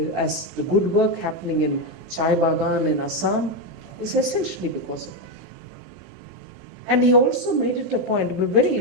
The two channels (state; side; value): normal; both; correlation 0.07